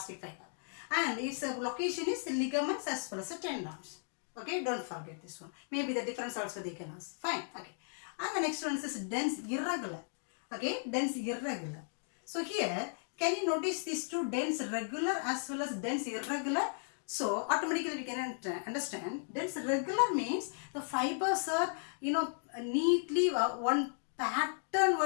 fiber. And its location is the ligaments as well as the tendons. Okay, don't forget this one. Maybe the difference also they can ask. Fine. Okay. And the next one is dense irregular. Okay, dense irregular. So here, can you notice these two, dense regular as well as dense irregular? So automatically we can understand dense regular means the fibers are neatly one pattern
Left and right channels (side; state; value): right; silent; digital silence